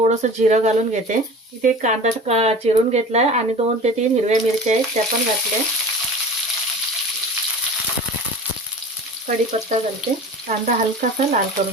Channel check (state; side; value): normal; both; correlation 0.38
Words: जिरं घालून घेते. इथे कांदा चिरून घेतलाय आणि 2 ते 3 हिरव्या मिरच्या आहेत त्या पण घातल्या. कढीपत्ता घालते. कांदा हलकासा लाल